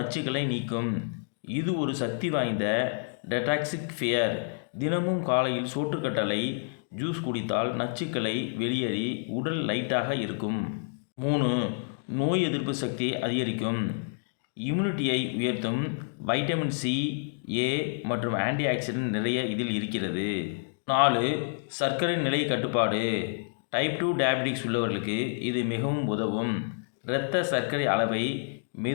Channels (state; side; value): silent; right; digital silence